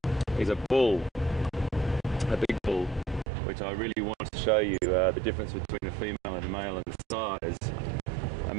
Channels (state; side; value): drops out; left; at 3.2 s